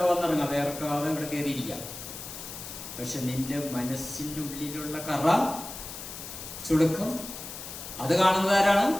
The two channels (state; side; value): noise; left; hiss, 10 dB below the sound